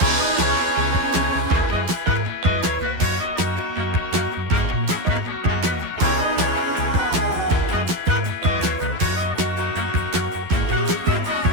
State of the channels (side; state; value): left; late; 12 ms